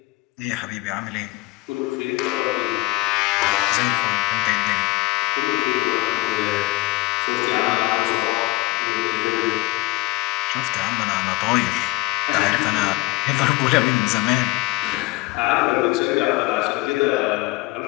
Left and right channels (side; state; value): right; quieter; 22.7 dB